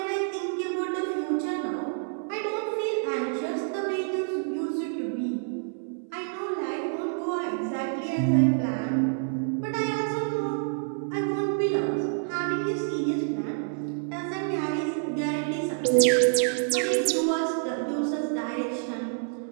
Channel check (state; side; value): silent; left; 60 dB below the other